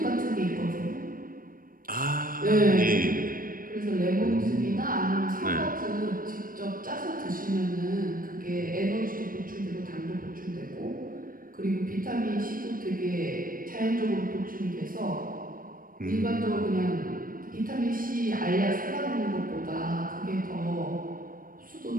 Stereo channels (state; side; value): late; left; 0.41 ms